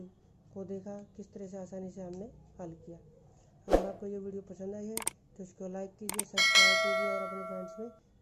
को देखा किस तरह से आसानी से हमने हल किया। अगर आपको ये वीडियो पसंद आई है तो इसको लाइक कीजिए, सब्सक्राइब कीजिए और अपने फ्रेंड्स में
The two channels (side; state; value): both; identical; correlation 1.00